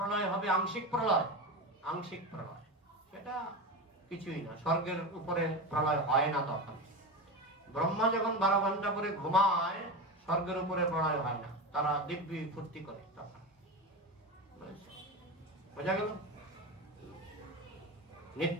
হবে, আংশিক প্রলয়। আংশিক প্রলয় সেটা কিছুই না, স্বর্গের উপরে প্রলয় হয় না তখন। ব্রহ্মা যখন 12 ঘন্টা পরে ঘুমায়, স্বর্গের উপরে প্রলয় হয় না, তারা দিব্যি ফুর্তি করে তখন। বোঝা গেল?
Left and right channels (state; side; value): normal; both; correlation 0.22